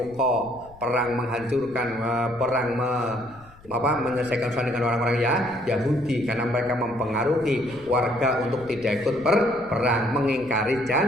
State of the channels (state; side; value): noise; left; rumble, 24 dB below the sound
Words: perang menghancurkan, perang menyelesaikan urusan dengan orang-orang Yahudi karena mereka mempengaruhi warga untuk tidak ikut berperang, mengingkari